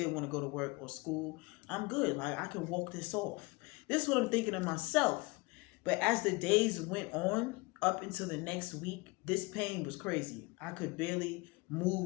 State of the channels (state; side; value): quieter; right; 25.6 dB